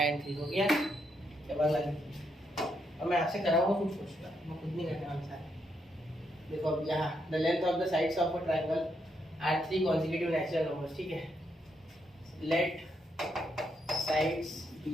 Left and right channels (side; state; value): both; normal; correlation 0.78